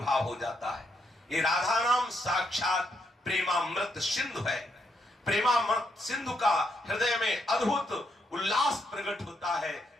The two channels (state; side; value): normal; both; correlation 0.77